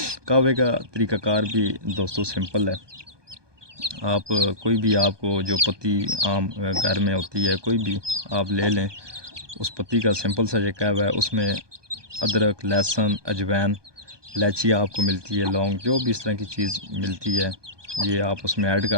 قہوے کا طریقہ کار بھی دوستو سمپل ہے۔ آپ کوئی بھی، آپ کو جو پتی عام گھر میں ہوتی ہے کوئی بھی آپ لے لیں، اس پتی کا سمپل سا یہ قہوہ ہے، اس میں ادرک، لہسن، اجوائن، الائچی آپ کو ملتی ہے، لونگ، جو بھی اس طرح کی چیز ملتی ہے یہ آپ اس میں ایڈ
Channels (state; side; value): late; left; 1.2 ms